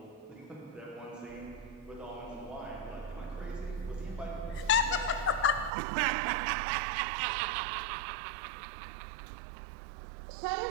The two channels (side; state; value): left; drops out; at 5.7 s